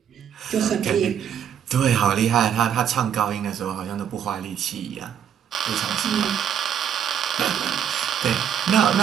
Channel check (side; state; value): left; quieter; 8.8 dB